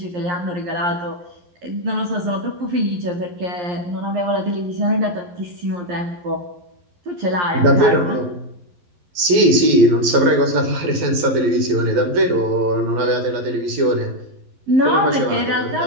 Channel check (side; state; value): left; late; 12 ms